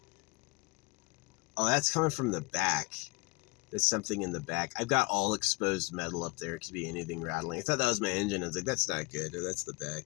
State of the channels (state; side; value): quieter; right; 28.3 dB